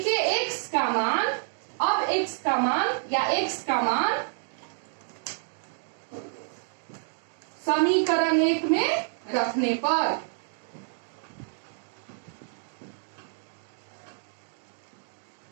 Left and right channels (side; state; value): left; silent; digital silence